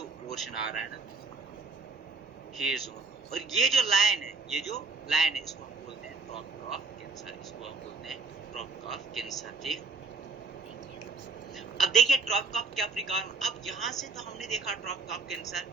पोर्शन आ रहा है ना, ये जोन, और ये जो लाइन है, ये जो लाइन है, इसको हम बोलते हैं ट्रॉपिक ऑफ कैंसर, इसको हम बोलते हैं ट्रॉपिक ऑफ कैंसर। ठीक, अब देखिए ट्रॉपिक ऑफ कैप्रिकॉर्न। अब यहाँ से तो हमने देखा ट्रॉपिक ऑफ कैंसर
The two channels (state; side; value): quieter; left; 4.1 dB